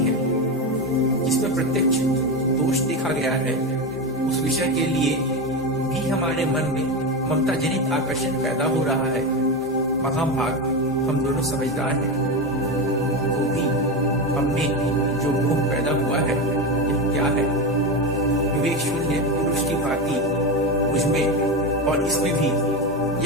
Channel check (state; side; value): normal; both; correlation 0.17